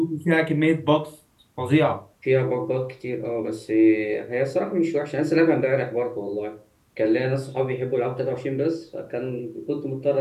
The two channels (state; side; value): identical; both; correlation 1.00